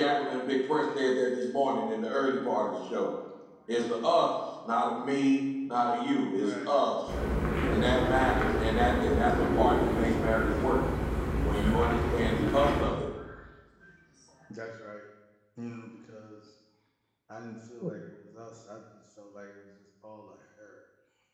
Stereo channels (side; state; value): both; identical; correlation 1.00